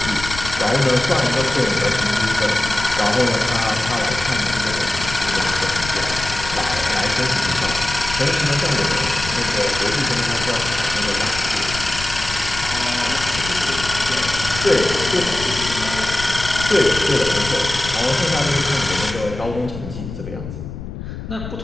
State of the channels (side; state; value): left; noise; rumble, 10 dB below the sound